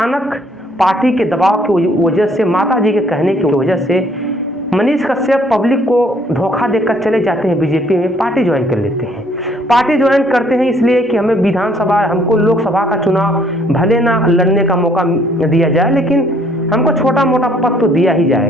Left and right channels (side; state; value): both; normal; correlation 0.63